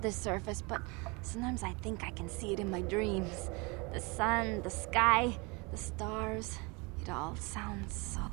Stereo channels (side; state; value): left; quieter; 28.3 dB